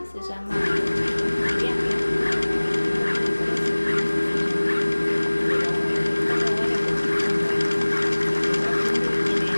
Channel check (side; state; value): both; inverted; correlation -1.00